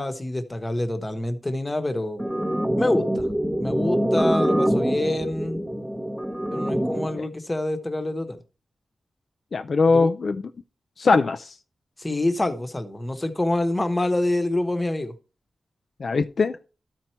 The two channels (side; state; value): both; normal; correlation 0.97